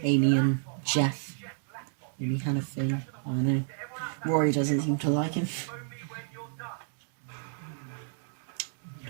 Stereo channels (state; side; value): silent; left; digital silence